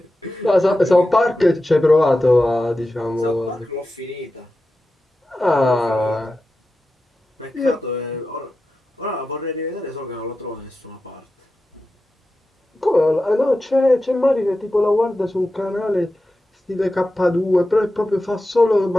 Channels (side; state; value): both; normal; correlation 0.92